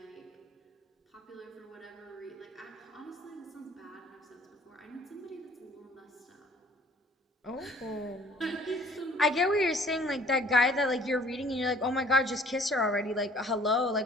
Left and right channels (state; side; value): normal; both; correlation 0.55